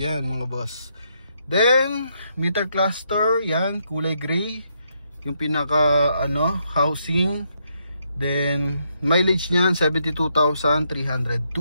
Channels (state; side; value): inverted; both; correlation -0.77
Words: mga boss. Then meter cluster, yan kulay gray yung pinaka housing. Then mileage niyan 72,302.